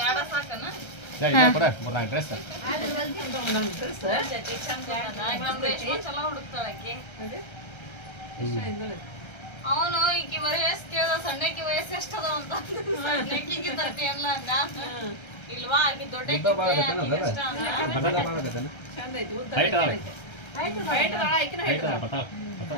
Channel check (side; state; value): right; late; 1.3 ms